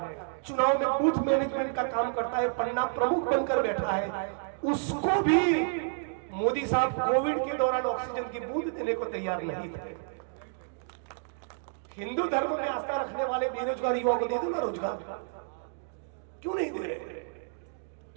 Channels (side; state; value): left; silent; digital silence